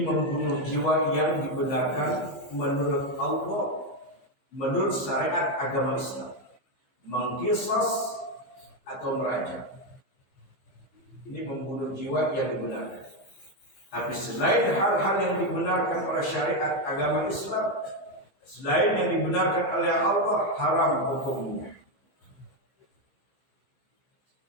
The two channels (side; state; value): right; late; 15 ms